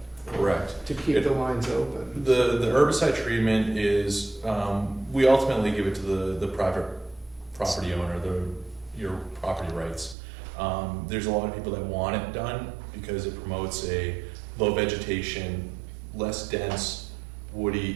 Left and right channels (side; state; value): left; drops out; at 10.2 s